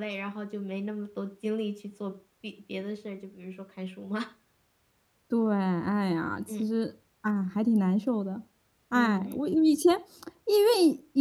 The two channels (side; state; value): both; identical; correlation 1.00